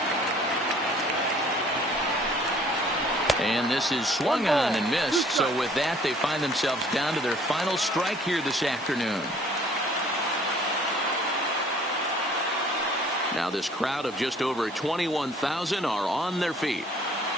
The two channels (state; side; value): normal; both; correlation 0.56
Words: And this is swung on and missed. So with that, they find themselves down to their final strike here this afternoon. Now this crowd of just over 21,000 are on their feet.